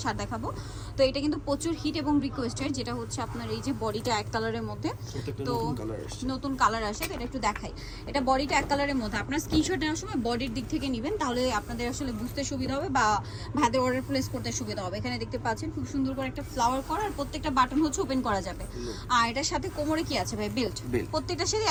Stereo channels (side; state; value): both; identical; correlation 1.00